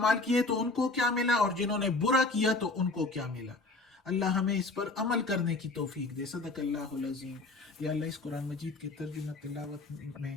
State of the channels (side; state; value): right; quieter; 3.3 dB